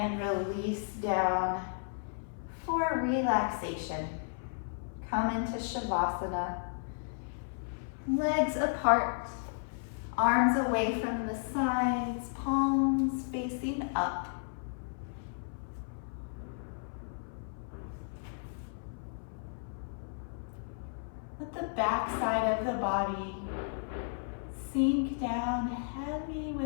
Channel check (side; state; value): right; silent; 55 dB below the other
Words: release down for relaxation. Come into Shavasana. Legs apart. Arms away from the sides. Palms facing up. Let the back side of the body sink down heavy